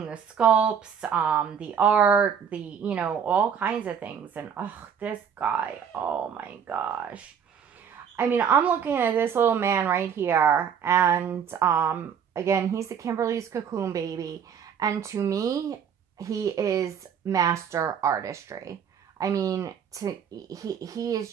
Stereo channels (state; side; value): quieter; left; 7.6 dB